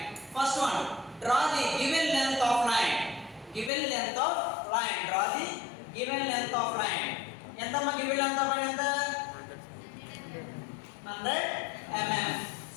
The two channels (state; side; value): drops out; right; at 3.7 s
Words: First one, draw the given length of line. Given length of line. Draw the given length of line. ఎంత మా given length of line ఎంత? 100 mm.